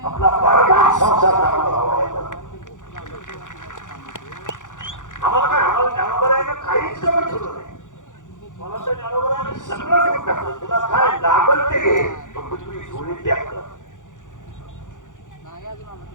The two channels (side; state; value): right; late; 0.87 ms